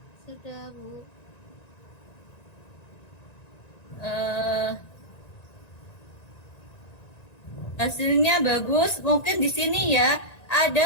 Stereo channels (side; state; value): right; late; 1.9 ms